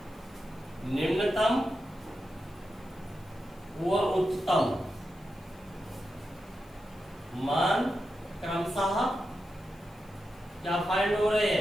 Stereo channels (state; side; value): noise; left; hiss, 29 dB below the sound